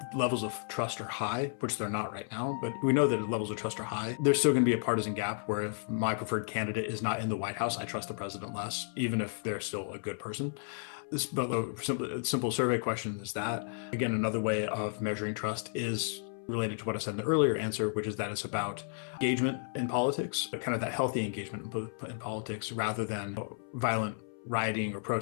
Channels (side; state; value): right; silent; 56 dB below the other